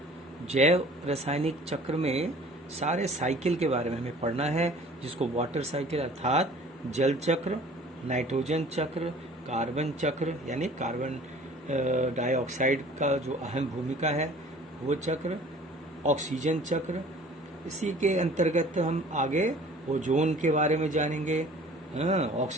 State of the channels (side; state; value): both; normal; correlation 0.49